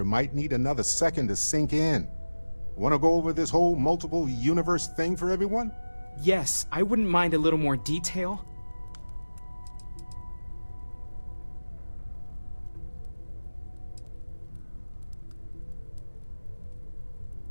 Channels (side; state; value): both; inverted; correlation -1.00